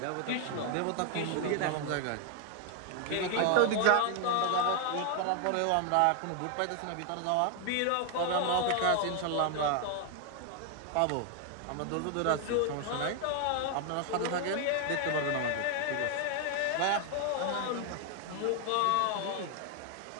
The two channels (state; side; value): different; both; correlation 0.00